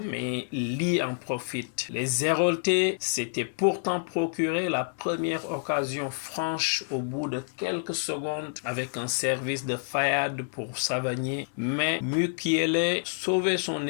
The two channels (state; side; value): silent; right; digital silence